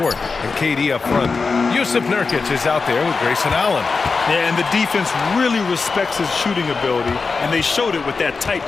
and KD up front. Yusuf Nurkic is out there with Grayson Allen. Yeah, and the defense really respects his shooting ability, and they showed it with that tight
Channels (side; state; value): right; quieter; 4.5 dB